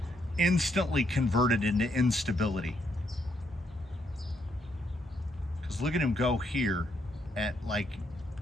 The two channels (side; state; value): both; normal; correlation 0.75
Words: instantly converted into instability. Because look at him go here at like